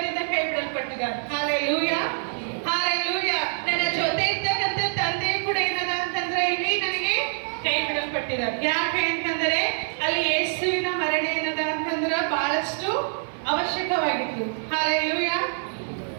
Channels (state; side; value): silent; left; 57 dB below the other